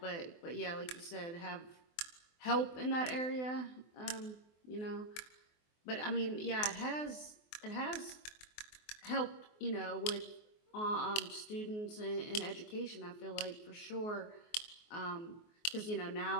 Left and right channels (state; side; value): late; right; 24 ms